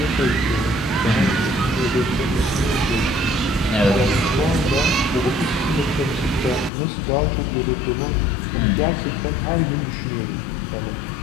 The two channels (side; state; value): right; drops out; at 6.7 s